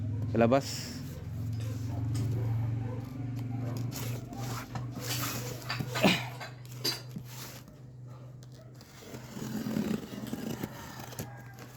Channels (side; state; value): both; identical; correlation 1.00